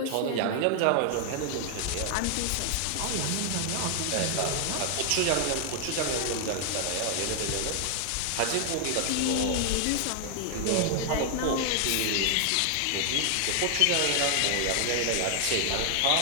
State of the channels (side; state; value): both; different; correlation 0.00